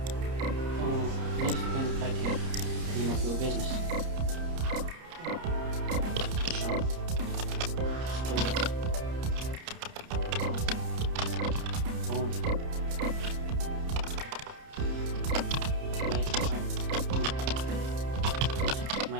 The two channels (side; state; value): left; late; 30 ms